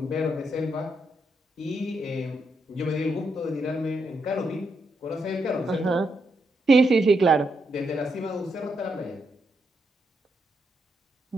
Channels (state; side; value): normal; both; correlation 0.81